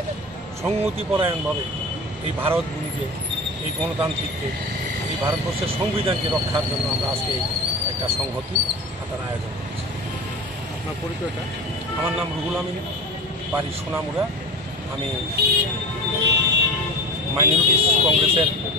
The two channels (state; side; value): normal; both; correlation 0.31